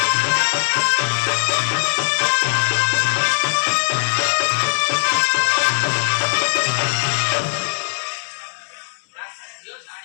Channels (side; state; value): right; silent; 66 dB below the other